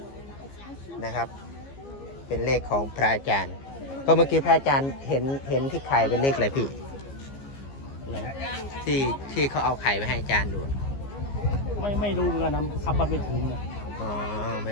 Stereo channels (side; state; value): right; late; 15 ms